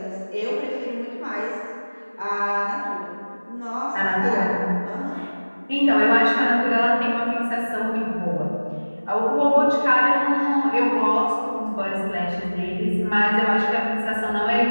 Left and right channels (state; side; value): inverted; both; correlation -1.00